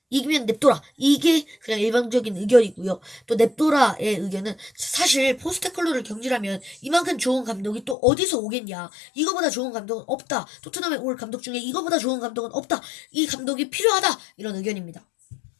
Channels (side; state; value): right; drops out; at 8.0 s